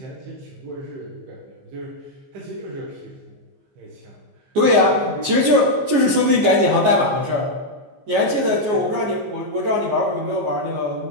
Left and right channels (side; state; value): left; late; 14 ms